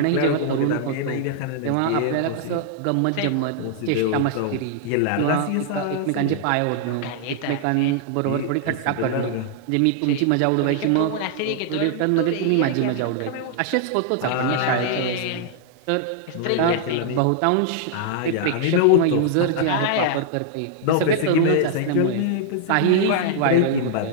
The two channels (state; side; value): different; both; correlation -0.01